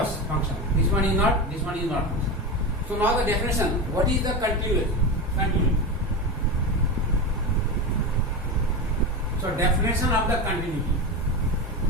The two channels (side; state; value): both; normal; correlation 0.20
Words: function. This one is not function. So now the definition. What is the continuity? So definition of the continuity.